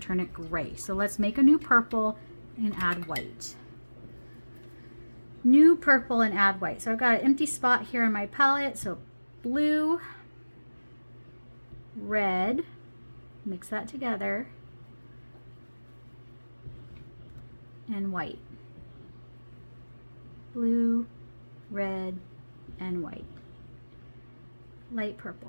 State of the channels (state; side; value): inverted; both; correlation -1.00